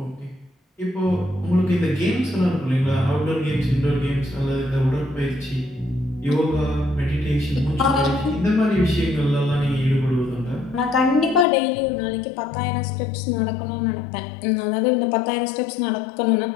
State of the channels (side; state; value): right; drops out; at 11.5 s